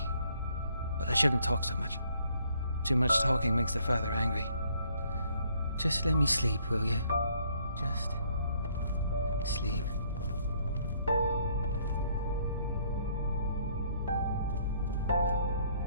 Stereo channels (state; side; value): inverted; both; correlation -0.66